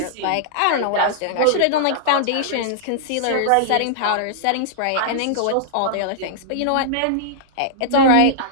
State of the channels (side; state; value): both; different; correlation -0.01